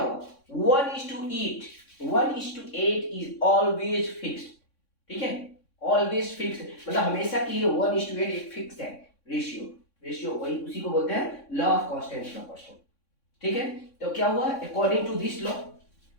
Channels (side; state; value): right; late; 3.6 ms